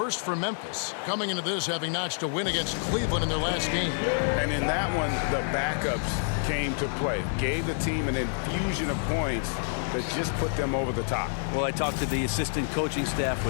for Memphis. Coming into this having notched a win against Cleveland in their last game. And in that one, the backups came to play. Gave the team an infusion of points that just put them over the top. Well, I talked to the assistant coaching staff.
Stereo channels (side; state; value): right; silent; 59 dB below the other